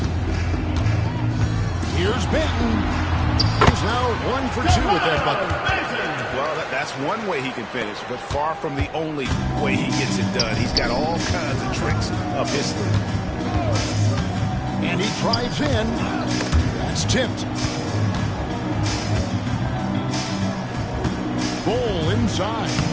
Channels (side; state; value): both; identical; correlation 1.00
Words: Here's Benton. He's now 1 for 2 with that bucket. Well, that's one way he can finish, but far from the only way he gets it done. He's got all kinds of tricks up his sleeve. And he drives in. That's tipped. Ball inside.